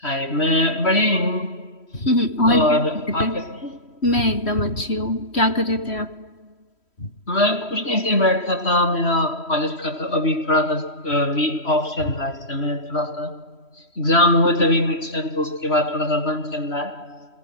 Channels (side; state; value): right; late; 3.1 ms